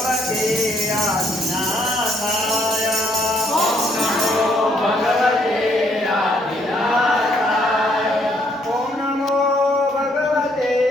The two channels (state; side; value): normal; both; correlation 0.69